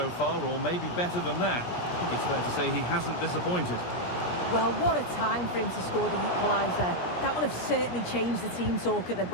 far, or maybe better than that. I think it's fair to say he hasn't disappointed. Well, what a time for him to score the equaliser. That will have certainly changed the team talk at the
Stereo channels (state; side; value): late; right; 17 ms